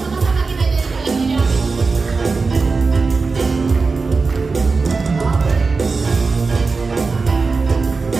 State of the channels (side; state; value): left; quieter; 4.3 dB